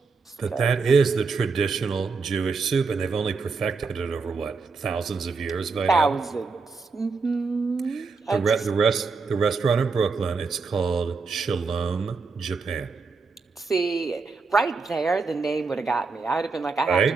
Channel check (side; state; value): left; quieter; 4.6 dB